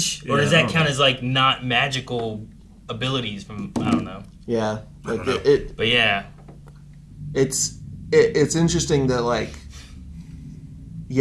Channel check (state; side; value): identical; both; correlation 1.00